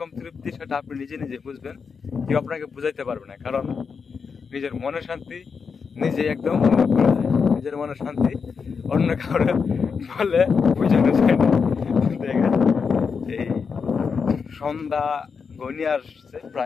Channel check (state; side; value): quieter; right; 5.7 dB